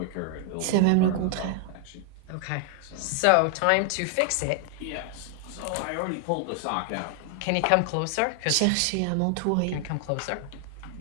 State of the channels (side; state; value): both; different; correlation 0.00